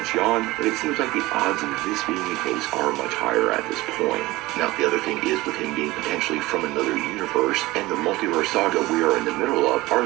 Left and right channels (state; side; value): quieter; left; 19.4 dB